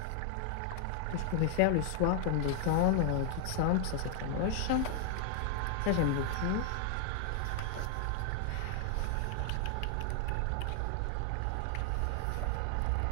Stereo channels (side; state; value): both; different; correlation 0.00